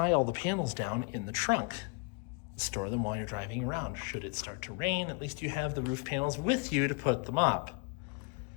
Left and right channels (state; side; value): quieter; right; 33.4 dB